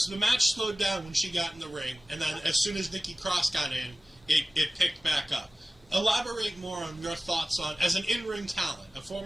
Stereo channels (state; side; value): normal; both; correlation 0.97